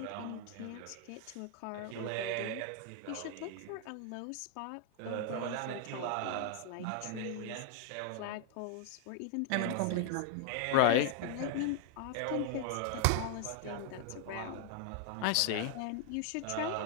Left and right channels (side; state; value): both; different; correlation 0.00